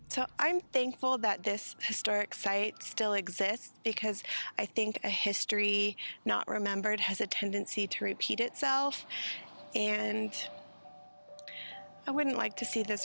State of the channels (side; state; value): both; inverted; correlation -1.00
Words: So I'm thankful that this historic site still exists, because I think a history not remembered has a tendency to repeat itself, and I wouldn't like to see